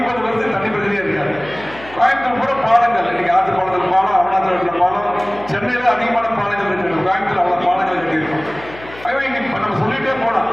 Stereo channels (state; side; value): noise; left; hum, 18 dB below the sound